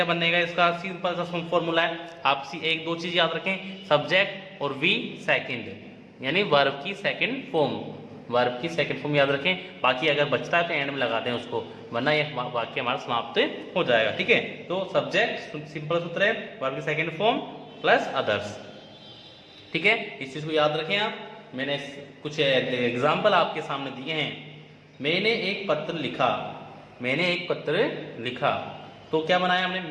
बनेगा इसका, सिंपल सा फॉर्मूला है। आप एक दो चीज याद रखें, सब्जेक्ट और वी सेकंड, यानी वर्ब की सेकंड फॉर्म, वर्ब की सेकंड फॉर्म याद रखें। बाकी अगर बचता है तो एंड में लगा दें उसको, वरना ये वाक्य हमारा समाप्त हो जाएगा। ठीक है, तो सब्जेक्ट सिंपल सूत्र है, वर्ब की सेकंड फॉर्म प्लस अदर्स। ठीक है, इस चीज को याद रखें आप। मैंने कुछ एग्जाम्पल आपके सामने दिए हैं। मैंने एक पत्र लिखा, मैंने एक पत्र लिखा, तो क्या बनाया हमने,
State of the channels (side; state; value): both; identical; correlation 1.00